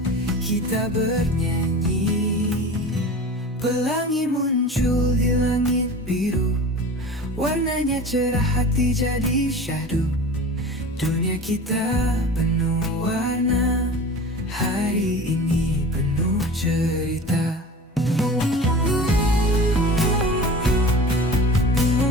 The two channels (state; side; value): normal; both; correlation 0.36